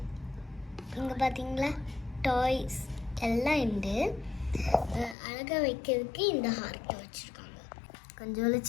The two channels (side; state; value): right; drops out; at 5.2 s